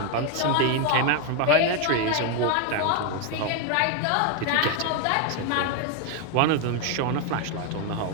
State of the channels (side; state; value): both; different; correlation 0.01